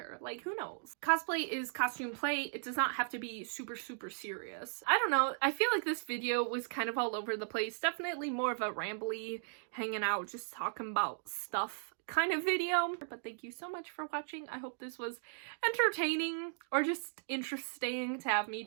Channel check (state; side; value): silent; left; digital silence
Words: Like, who knows? Cosplay is costume play. It does not have to be super, super serious. I don't know. I feel like this video was kind of all over the place. Definitely more of a rambly, hanging out, just talking about stuff kind of video. But thank you so much for watching. I hope this was entertaining or just interesting to have me